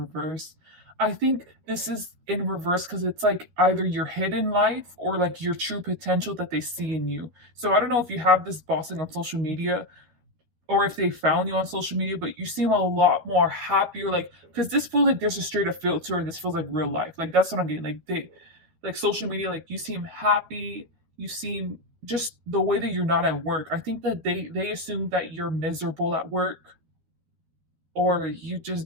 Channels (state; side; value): late; left; 12 ms